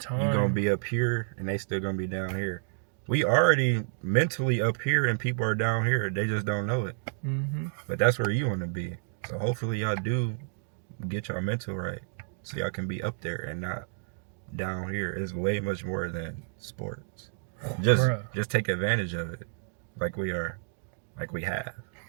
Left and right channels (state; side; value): silent; left; digital silence